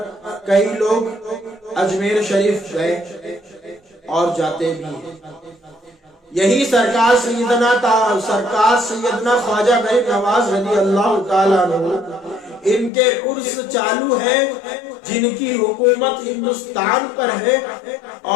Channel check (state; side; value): drops out; right; at 12.9 s